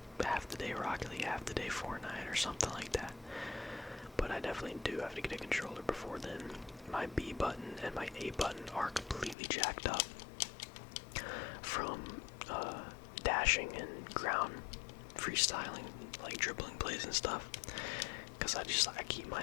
half the day Rocket League, half the day Fortnite, or something like that. But I definitely do have to get a controller before then. My B button and my A button are completely jacked up from dashing and ground freestyling, like dribbling plays and stuff. Because I keep my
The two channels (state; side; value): drops out; right; at 9.3 s